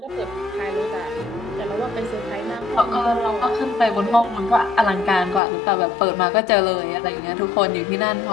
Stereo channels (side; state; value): right; drops out; at 5.4 s